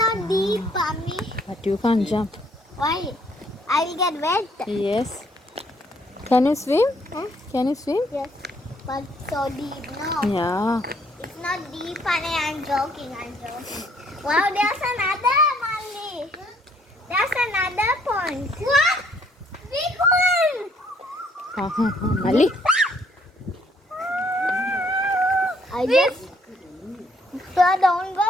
deep, Mommy. But you can't jump. Why? I will get wet. Yes. Can you swim? Huh? Can you swim? Yes. But so deep, no. Yeah. It's not deep, honey. I'm joking. Wow, there's another, Molly. There's another pond. What? Big one. Molly. I just... don't go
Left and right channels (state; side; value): normal; both; correlation 0.66